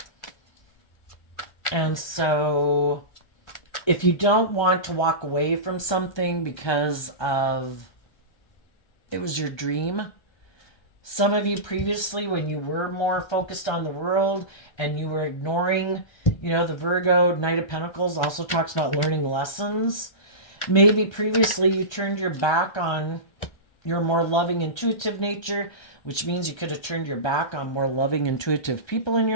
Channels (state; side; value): late; right; 1.3 ms